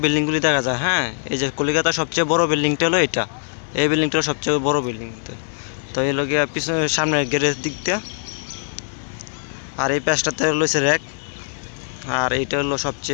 বিল্ডিংগুলি দেখা যায়। হ্যাঁ, এই যে কলকাতার সবচেয়ে বড় বিল্ডিংটা হলো এটা, এই বিল্ডিংটা সবচেয়ে বড় বিল্ডিং। তো এই লোক পিছনে সামনের গেটের দিকটা, আর এই পাশটাতে রয়েছে র্যাক, আর এইটা হলো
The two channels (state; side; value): silent; right; 60 dB below the other